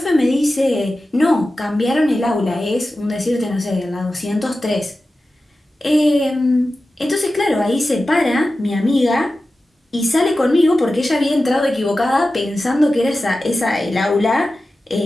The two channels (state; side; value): normal; both; correlation 0.94